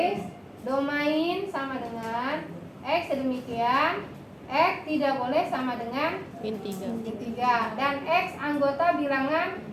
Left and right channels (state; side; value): identical; both; correlation 1.00